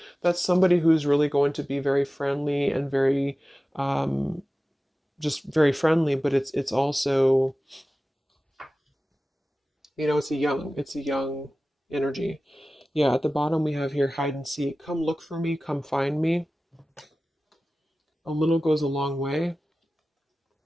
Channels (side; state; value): both; normal; correlation 0.96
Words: that's somebody who's really going to be very friendly and very, um, just very friendly. But it's also, it's a young energy. Yeah, at the bottom we have here hide and seek. Come look for me, come find me. A little goes a long way.